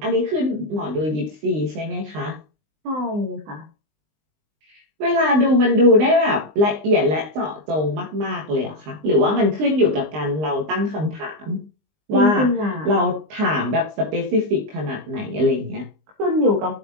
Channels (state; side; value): late; left; 20 ms